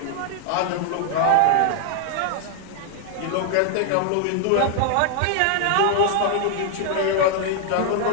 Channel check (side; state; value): both; different; correlation 0.00